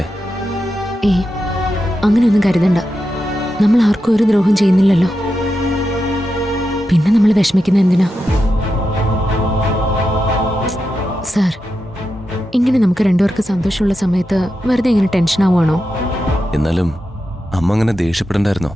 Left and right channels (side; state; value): both; normal; correlation 0.88